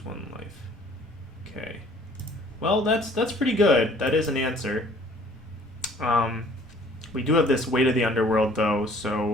1 life. Okay. Well, that's pretty good. That is an answer. We do have this Weight of the Underworld, though,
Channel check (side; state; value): both; normal; correlation 0.55